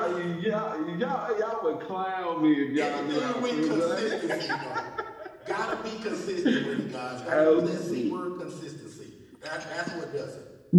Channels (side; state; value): both; identical; correlation 1.00